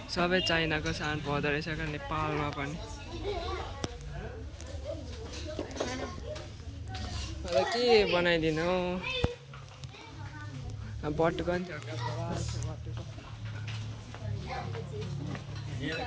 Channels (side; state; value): both; identical; correlation 1.00